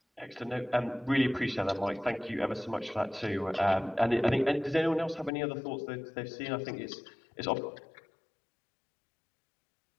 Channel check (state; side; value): drops out; right; at 5.3 s